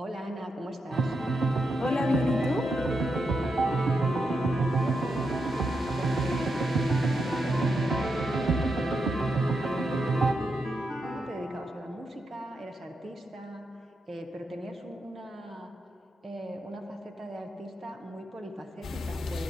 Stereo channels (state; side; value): normal; both; correlation 0.84